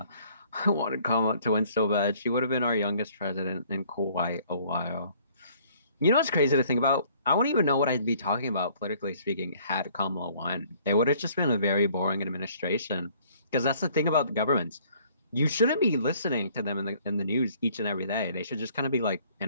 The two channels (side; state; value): both; inverted; correlation -0.59